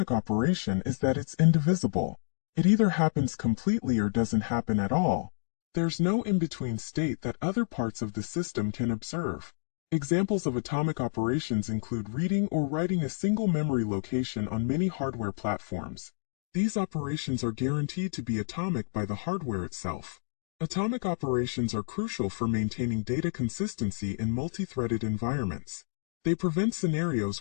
operation is that it's indivisible. It either happens completely or doesn't happen at all. There's no in-between state that other parts of the system can observe. Examples of atomic operations include reading or writing a single memory location on many hardware platforms. These operations are guaranteed to be atomic by the hardware itself. Atomic operations are crucial for maintaining data consistency in multi-threaded environments. They prevent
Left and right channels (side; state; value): right; silent; digital silence